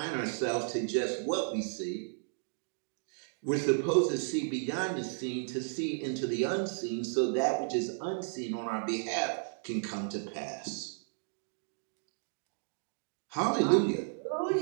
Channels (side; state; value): left; silent; digital silence